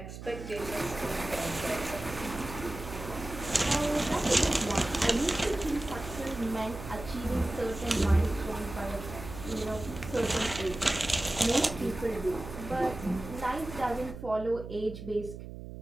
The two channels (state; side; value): noise; right; hum, 11 dB below the sound